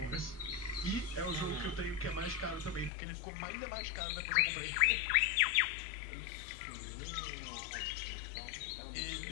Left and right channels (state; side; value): drops out; right; at 2.9 s